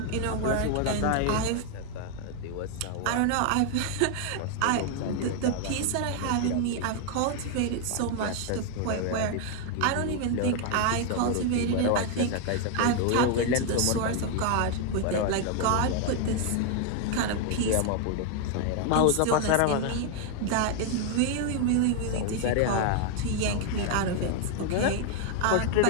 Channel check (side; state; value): both; different; correlation 0.00